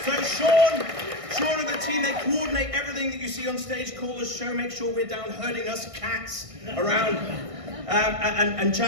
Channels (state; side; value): late; left; 1.6 ms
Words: So Sean and the team, they coordinate everything that you see on stage, call us, show, make sure we're down herding us cats around. And